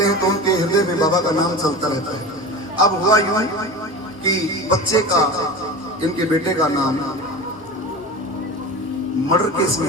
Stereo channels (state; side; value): normal; both; correlation 0.31